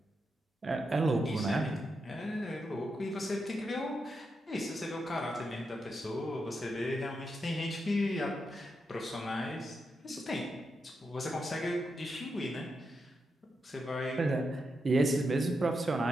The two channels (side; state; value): both; normal; correlation 0.85